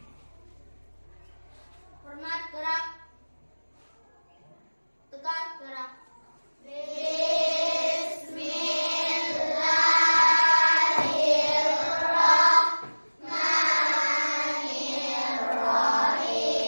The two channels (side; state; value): both; inverted; correlation -1.00